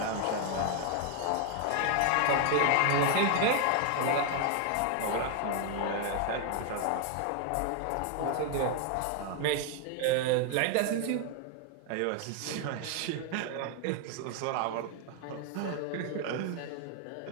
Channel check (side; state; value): both; different; correlation 0.00